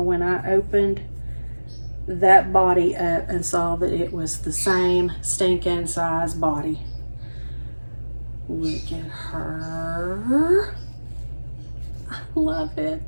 when I opened that body up and saw that it was the same stinking size body. Look at her. I love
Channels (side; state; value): both; inverted; correlation -1.00